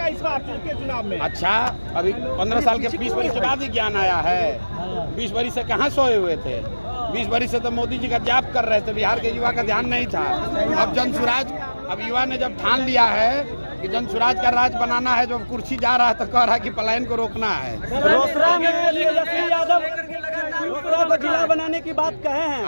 इस बार के चुनाव में। अच्छा, अभी 15 साल के 20 वर्ष के बाद ही ज्ञान आया है। 20 वर्ष से कहाँ सोए हुए थे? 20 वर्ष से तो मोदी जी का जाप कर रहे थे, बिहार के युवा का ध्यान नहीं था। अब जनसुराज, अब युवा ने जब ठान लिया है कि जनसुराज का राज बनाना है, जो कुर्सी जा रहा है तो कह रहा है कि पलायन को रोकना है। रोसड़ा में तेजस्वी यादव को जिला बनाने की बात कहे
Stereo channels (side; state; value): both; inverted; correlation -1.00